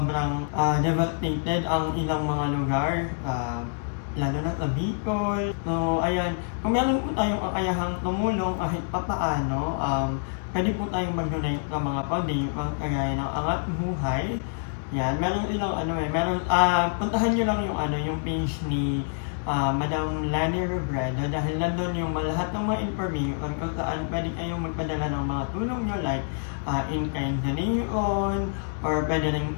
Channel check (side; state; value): right; silent; 60 dB below the other